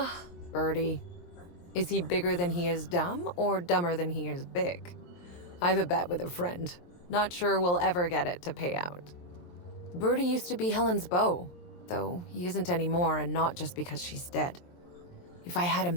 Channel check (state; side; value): late; right; 23 ms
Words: Bertie. Is he bigger than he is dumb, or dumber than he is big? I've a bet with a friend. Not sure we'll ever get it to pay out. Bertie used to be Helen's beau, though he isn't anymore, and not just because she's dead. If I had